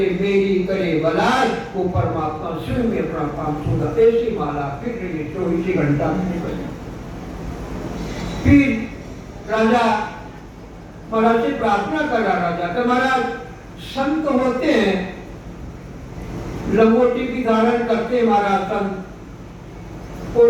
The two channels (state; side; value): identical; both; correlation 1.00